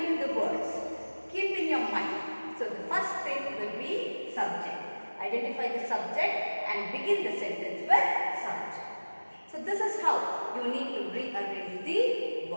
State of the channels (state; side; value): inverted; both; correlation -1.00